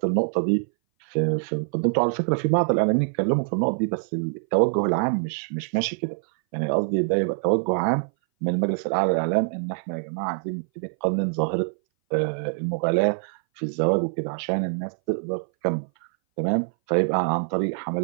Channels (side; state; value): left; silent; 59 dB below the other